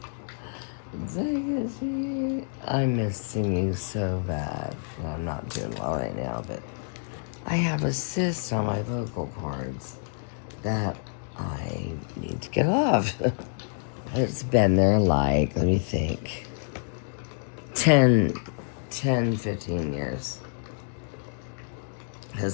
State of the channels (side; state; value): right; silent; 60 dB below the other